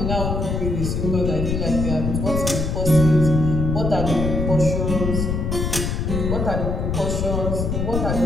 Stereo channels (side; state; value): left; noise; rumble, 1 dB below the sound